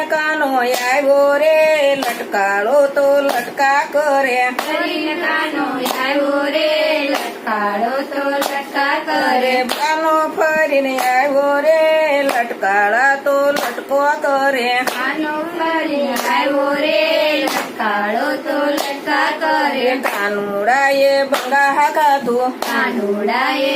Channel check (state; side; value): identical; both; correlation 1.00